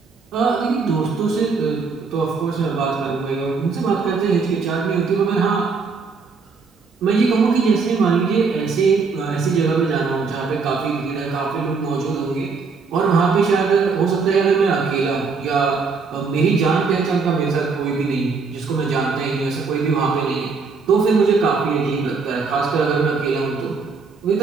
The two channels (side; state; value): left; quieter; 4.8 dB